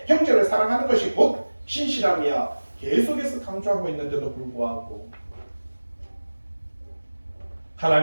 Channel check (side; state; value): both; inverted; correlation -1.00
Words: 형제를 사랑하는 것이 곧 신실함이야. 계속해서 강조하고 있는데도 불구하고